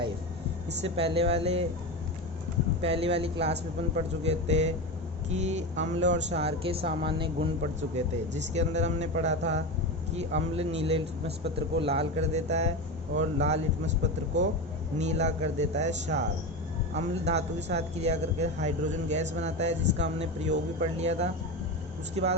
इससे पहली वाली क्लास में अपन पढ़ चुके थे कि अम्ल और क्षार के सामान्य गुण पढ़ चुके थे, जिसके अंदर हमने पढ़ा था कि अम्ल नीले लिटमस पत्र को लाल कर देता है और लाल लिटमस पत्र को नीला कर देता है क्षार। अम्ल धातु के साथ क्रिया करके हाइड्रोजन गैस बनाता है, जिसका हमने प्रयोग भी पढ़ लिया था। उसके बाद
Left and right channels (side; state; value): both; normal; correlation 0.21